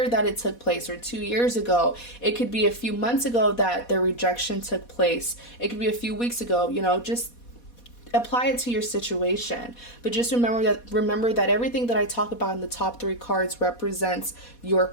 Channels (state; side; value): late; right; 4.2 ms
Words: that it took place, or 2 years ago. It could be a few months ago that the rejection took place. It could be a few weeks ago. You know, just apply it to your situation. But just remember that everything that I talk about in the top 3 cards represents your